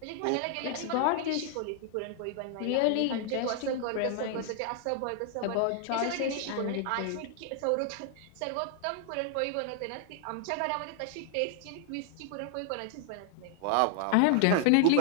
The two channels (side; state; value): both; different; correlation 0.00